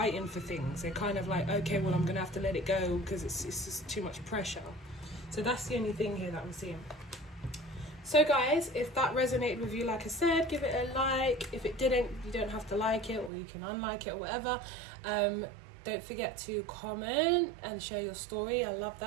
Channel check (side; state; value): left; drops out; at 13.3 s